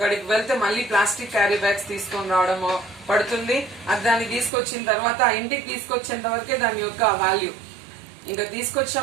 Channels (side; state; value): left; drops out; at 4.5 s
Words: వెళ్తే మళ్ళీ ప్లాస్టిక్ క్యారీ బ్యాగ్స్ తీసుకొని రావడము పడుతుంది. అది దాన్ని తీసుకొచ్చిన తర్వాత ఇంటికి తీసుకొచ్చేంత వరకే దాని యొక్క వాల్యూ. ఇంకా